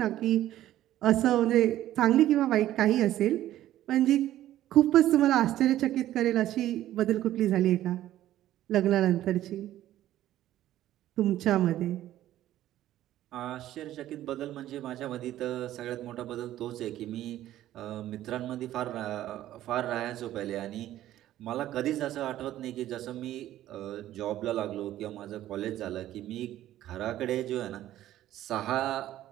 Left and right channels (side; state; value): left; quieter; 13.4 dB